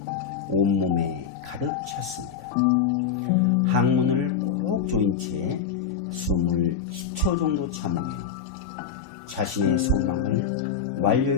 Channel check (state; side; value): quieter; right; 7.2 dB